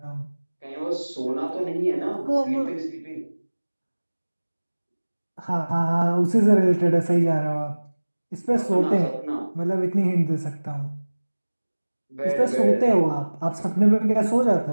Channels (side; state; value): both; inverted; correlation -1.00